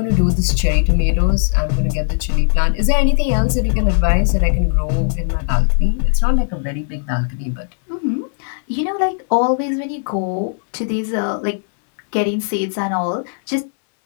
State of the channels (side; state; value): right; silent; digital silence